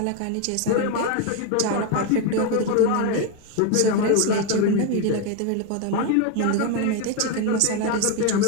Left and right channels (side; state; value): both; different; correlation 0.02